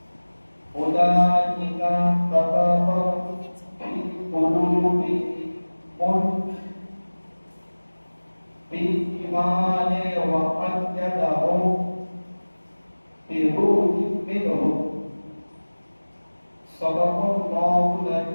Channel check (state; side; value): inverted; both; correlation -1.00